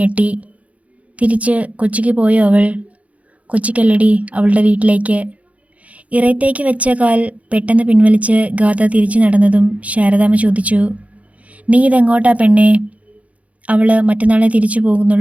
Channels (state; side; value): late; left; 0.067 ms